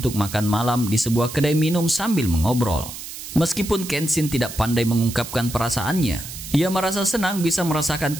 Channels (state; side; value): noise; right; hiss, 11 dB below the sound